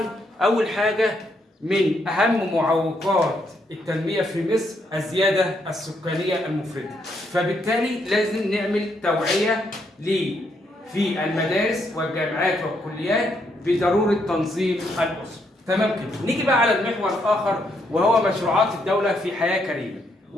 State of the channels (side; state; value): both; normal; correlation 0.75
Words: أول حاجة من أهم معوقات التنمية في مصر الزيادة السكانية المفرطة، فبالتالي لازم نعمل توعية في المدارس والجامعات والكليات بضرورة تنظيم الأسرة. تمام كده. نيجي بقى على المحور الآخر وهو مشروعات الدولة في حياة كريمة